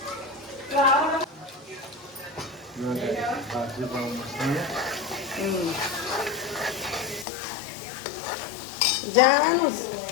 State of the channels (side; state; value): right; drops out; at 7.2 s